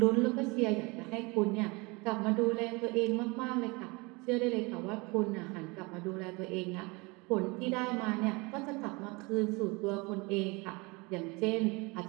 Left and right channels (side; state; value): left; quieter; 26.5 dB